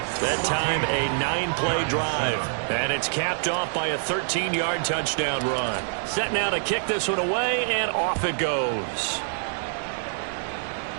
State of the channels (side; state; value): left; silent; digital silence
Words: That time a 9-play drive. And it's capped off by a 13-yard touchdown run. Set now to kick this one away, and off it goes.